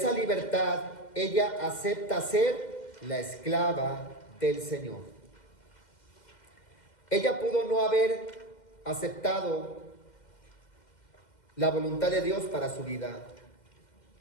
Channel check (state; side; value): late; right; 2.1 ms